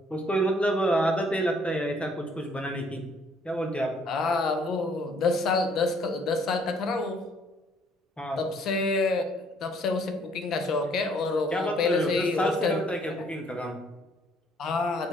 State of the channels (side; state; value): both; normal; correlation 0.63